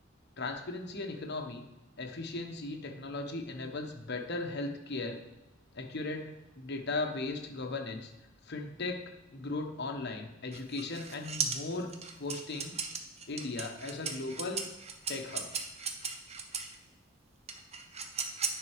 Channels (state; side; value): normal; both; correlation 0.14